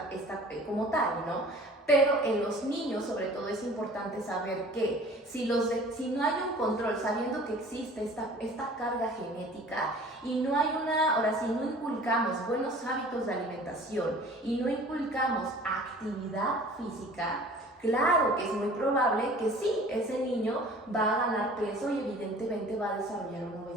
como tal, ¿no? Pero en los niños sobre todo es importante saber que si no hay un control, sabiendo que existe esta carga genética y no hay ahora sí, no inculcamos buenos hábitos de alimentación y no inculcamos actividad física, claro que es muy probable que sí, ese niño va a ganar peso y evidentemente va a desarrollar una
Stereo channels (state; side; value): normal; both; correlation 0.47